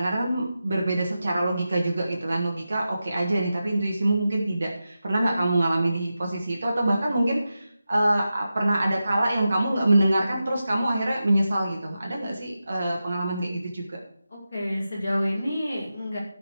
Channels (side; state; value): both; inverted; correlation -0.91